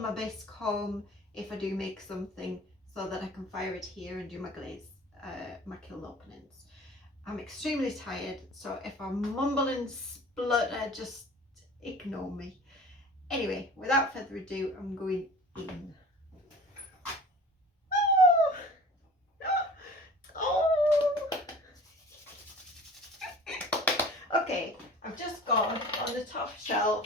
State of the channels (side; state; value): both; normal; correlation 0.42